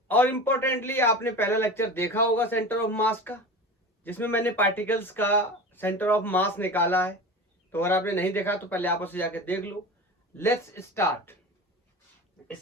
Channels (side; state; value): both; normal; correlation 0.31